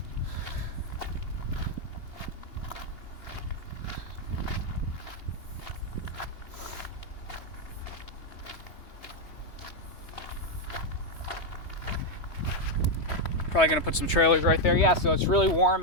Probably gonna put some trailers right there. Yeah, so it's really warm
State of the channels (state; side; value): late; right; 3.3 ms